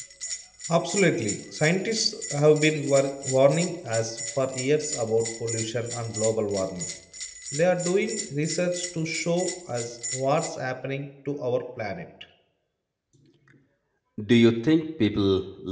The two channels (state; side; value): identical; both; correlation 1.00